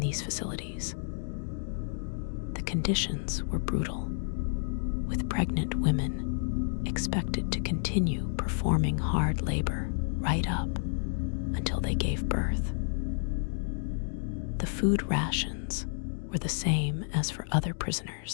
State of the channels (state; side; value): silent; right; digital silence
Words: facilities. The conditions were brutal, with pregnant women expected to continue performing hard labor right up until they gave birth. The food rations were the same as for other